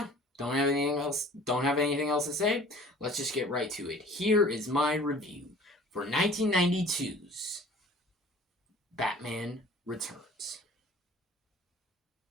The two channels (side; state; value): both; normal; correlation 0.48